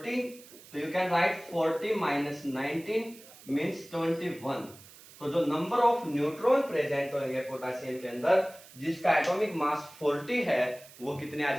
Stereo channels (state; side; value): noise; right; hiss, 21 dB below the sound